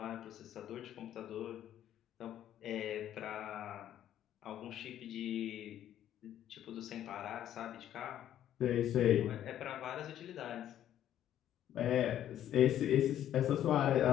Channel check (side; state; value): right; quieter; 11.3 dB